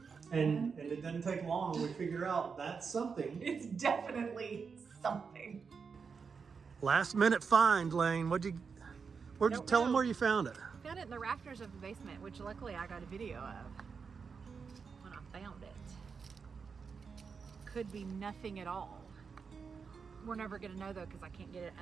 And it doesn't take long. We figure out that's something. It's definitely something. Last minute find, Lane. Where'd you tell them where you found it? Found it in the rafters of the basement, which luckily I got a video of when I found it. Could be nothing at all. We're never gonna know though, because I can't get it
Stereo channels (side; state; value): left; quieter; 5.6 dB